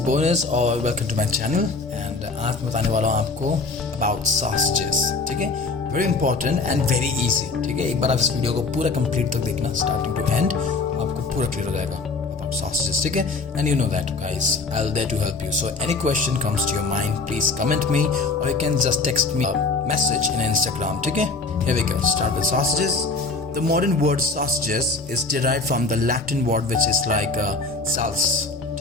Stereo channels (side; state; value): right; quieter; 3.8 dB